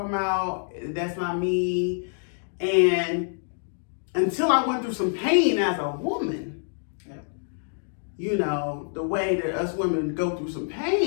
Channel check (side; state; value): right; silent; digital silence